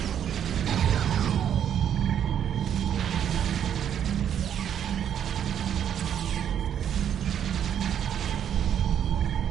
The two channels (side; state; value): left; quieter; 9.3 dB